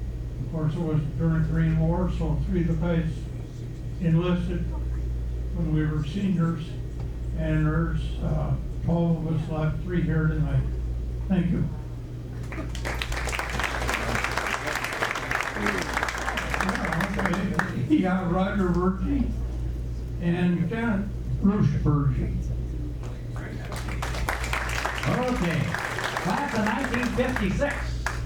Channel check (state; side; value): identical; both; correlation 1.00